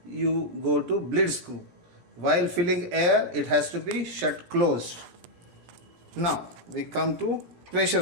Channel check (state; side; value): late; left; 17 ms